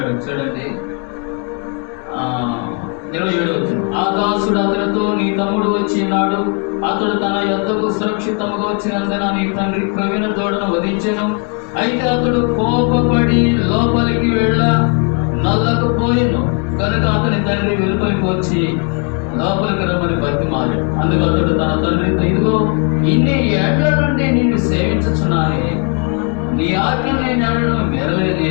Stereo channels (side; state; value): right; quieter; 38.7 dB